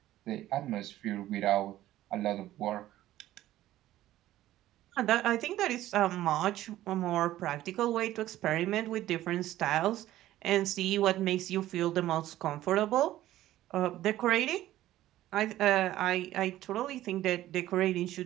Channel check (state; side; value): quieter; left; 14.3 dB